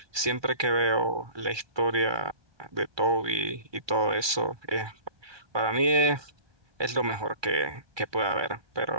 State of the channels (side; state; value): left; late; 1.2 ms